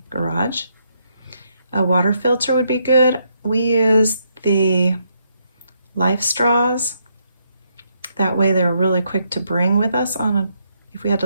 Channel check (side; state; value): both; inverted; correlation -0.76